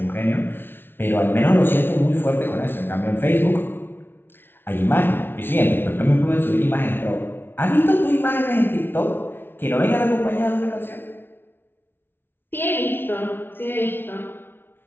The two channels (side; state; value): right; late; 0.11 ms